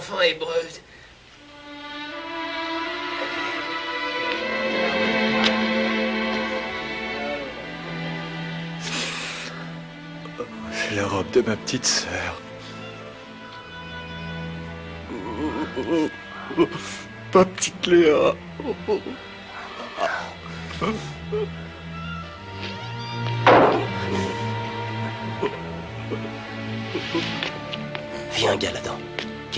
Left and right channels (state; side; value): identical; both; correlation 1.00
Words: hébreux. C'est la robe de ma petite sœur. Ma petite Léa. Viens, Galadan.